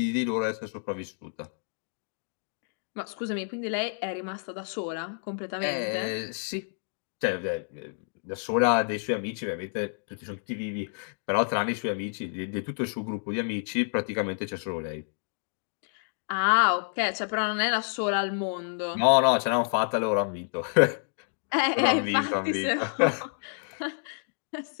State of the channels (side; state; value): right; silent; digital silence